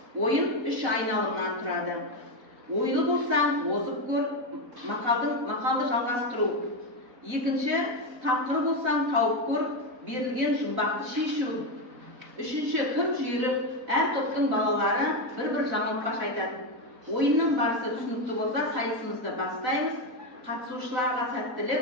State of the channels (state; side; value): late; left; 4.0 ms